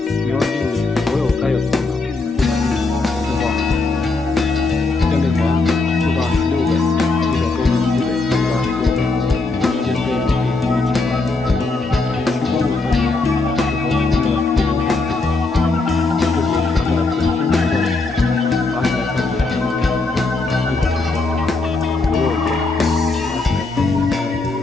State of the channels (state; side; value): quieter; right; 3.5 dB